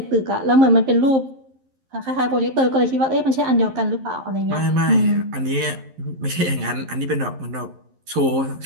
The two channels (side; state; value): left; late; 11 ms